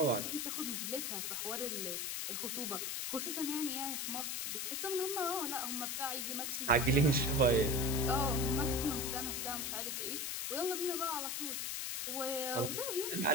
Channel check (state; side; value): noise; left; hiss, 2 dB below the sound